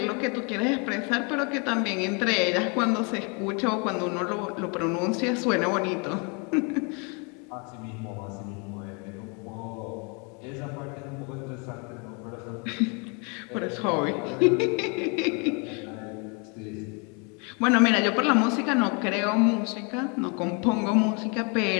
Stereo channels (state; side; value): quieter; right; 33.7 dB